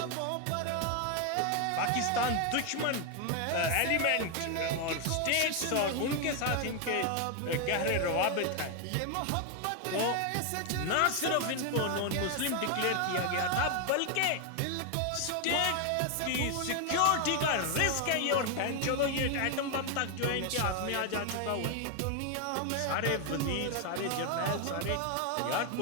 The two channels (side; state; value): both; different; correlation 0.01